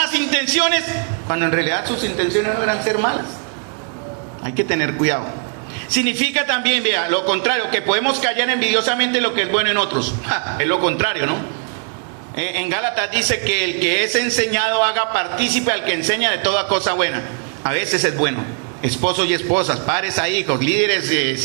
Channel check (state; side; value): quieter; left; 39.7 dB